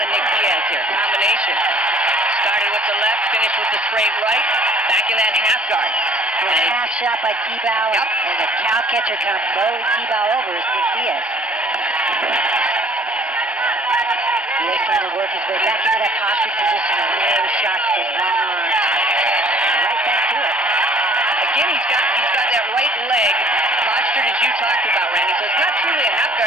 Nick Diaz here. Combination. Started with the left, finished with the straight right. Back in that half guard. A half shot by Tibau, Yep. and the cow catcher kind of mowed Tibau over is Nick Diaz. Diaz trying to work his way back into that posture position, and low shots with his long arms. Right back to it. Again, he's got that right leg postured as you talked about, Randy. So it's not truly a half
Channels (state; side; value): normal; both; correlation 0.53